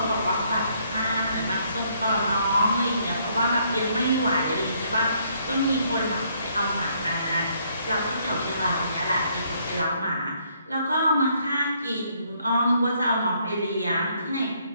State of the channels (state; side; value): inverted; both; correlation -0.69